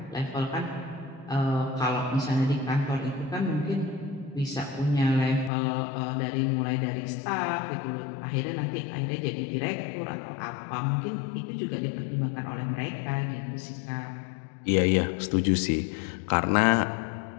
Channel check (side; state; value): right; drops out; at 5.5 s